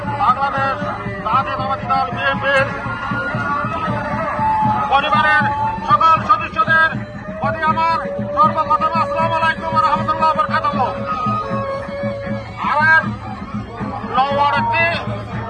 বাংলাদেশ জাতীয়তাবাদী দল বিএনপির পরিবারের সকল সদস্যদের প্রতি আমার সর্বপ্রথম আসসালামু আলাইকুম ওয়া রাহমাতুল্লাহি ওয়া বারাকাতুহু। আমার লওয়ারতে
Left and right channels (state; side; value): identical; both; correlation 1.00